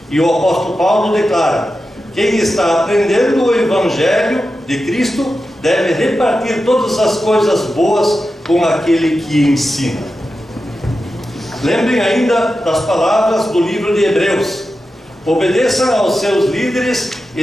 E o apóstolo Paulo declara: quem está aprendendo o Evangelho de Cristo deve repartir todas as coisas boas com aquele que ensina. Lembrem ainda das palavras do livro de Hebreus: obedeçam aos seus líderes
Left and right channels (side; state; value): both; normal; correlation 0.91